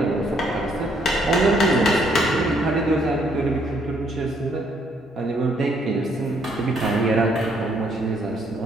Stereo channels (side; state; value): both; normal; correlation 0.69